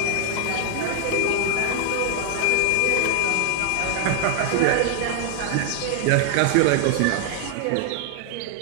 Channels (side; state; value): both; different; correlation 0.00